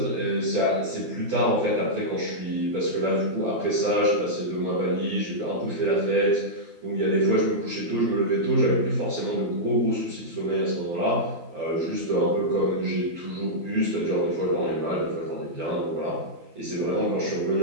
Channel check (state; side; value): late; left; 12 ms